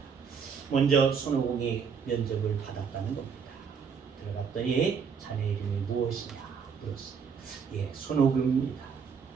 먼저 손오공이 면접을 받았다는 겁니다. 들어갔더니 자네 이름이 무엇이냐 물었어요. 예, 손오공입니다.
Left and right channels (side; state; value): left; quieter; 6.3 dB